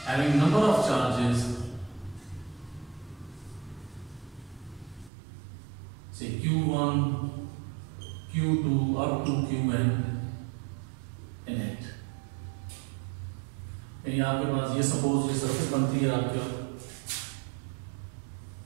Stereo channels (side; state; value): left; drops out; at 5.1 s